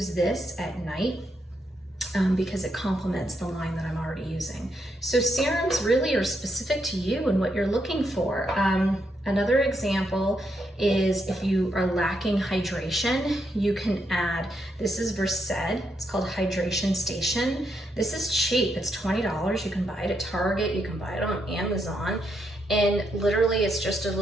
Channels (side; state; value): both; normal; correlation 0.79